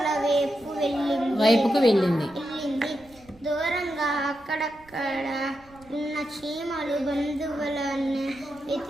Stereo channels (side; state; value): right; noise; rumble, 26 dB below the sound